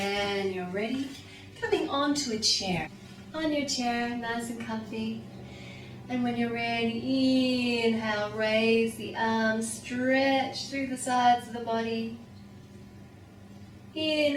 you're ready. Coming onto a chair. On your chair, nice and comfy. And when you're ready, inhale, raise the arms, stretch through the sides of the body.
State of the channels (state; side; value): identical; both; correlation 1.00